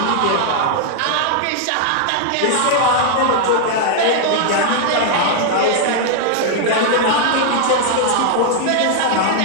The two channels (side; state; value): both; different; correlation 0.00